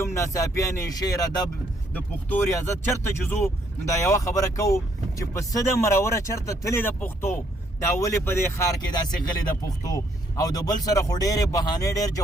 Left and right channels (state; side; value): normal; both; correlation 0.69